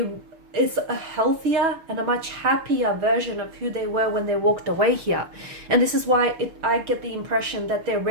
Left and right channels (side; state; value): left; late; 6.6 ms